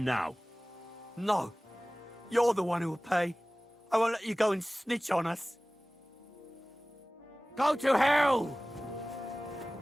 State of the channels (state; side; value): normal; both; correlation 0.98